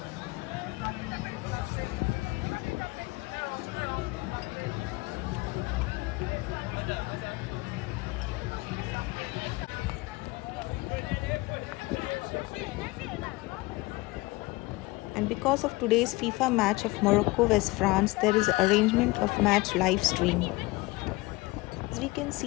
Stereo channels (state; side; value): quieter; right; 22.4 dB